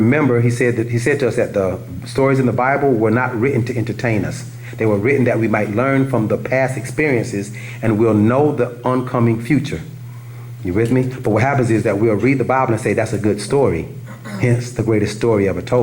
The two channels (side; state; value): both; identical; correlation 1.00